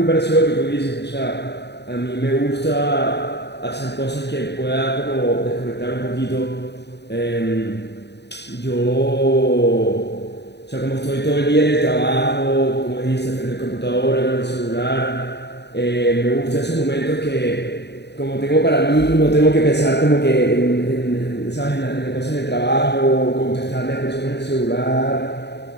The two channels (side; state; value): right; late; 0.50 ms